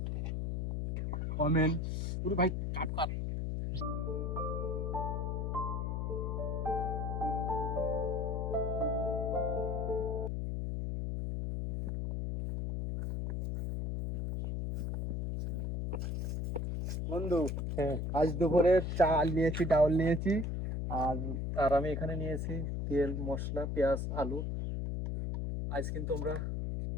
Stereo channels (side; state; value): left; noise; hum, 1 dB below the sound